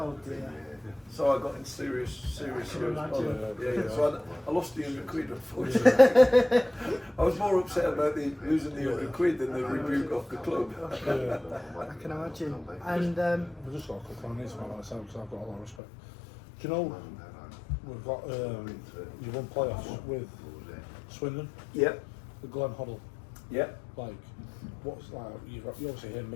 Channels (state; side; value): drops out; right; at 15.8 s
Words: dear. So I got in serious trouble. Yeah. So I lost the £100, unfortunately. I was more upset about losing the £100 than the rebuke off the club. I can imagine. And I've just got a quick one on this one myself because I've got a lot of respect. Do you know we've got you won playoffs with Swindon, Yeah. the Glenn Hoddle. Yeah. Like, what's like you obviously hear